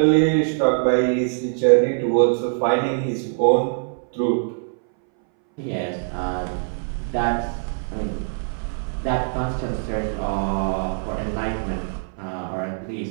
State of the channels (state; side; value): silent; left; 61 dB below the other